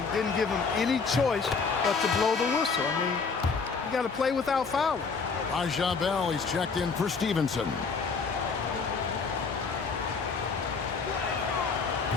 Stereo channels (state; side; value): quieter; right; 5.0 dB